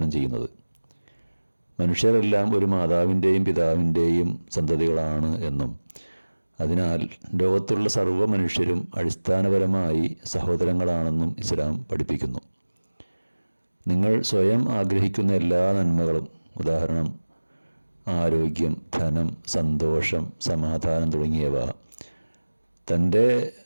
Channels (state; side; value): inverted; both; correlation -1.00